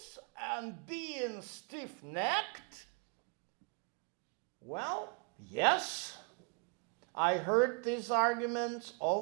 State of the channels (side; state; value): left; quieter; 35.4 dB